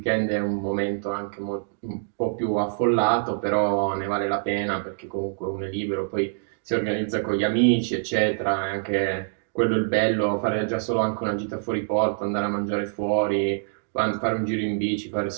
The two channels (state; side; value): silent; left; digital silence